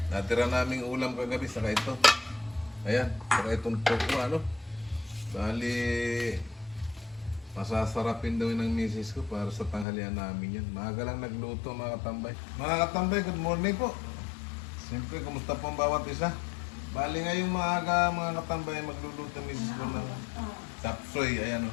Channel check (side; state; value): right; drops out; at 9.9 s